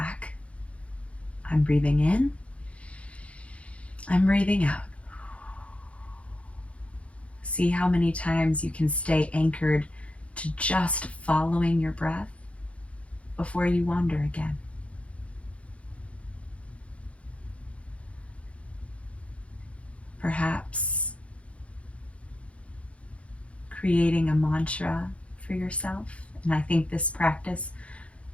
I'm breathing in. I'm breathing out. See how many times you can stay anchored to just following your breath before you wander again. Perhaps creating a mantra for yourself. And I think this practice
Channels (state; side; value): late; right; 0.063 ms